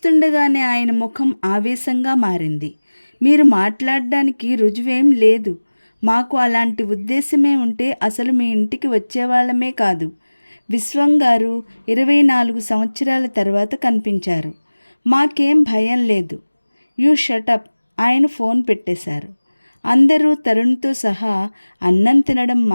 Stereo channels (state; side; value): inverted; both; correlation -1.00